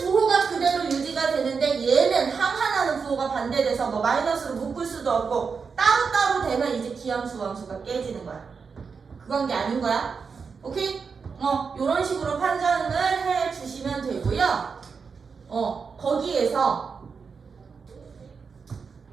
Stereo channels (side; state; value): left; quieter; 5.5 dB